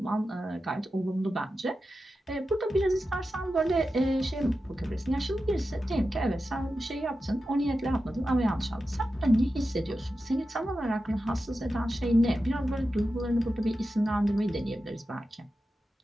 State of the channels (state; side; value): normal; both; correlation 0.91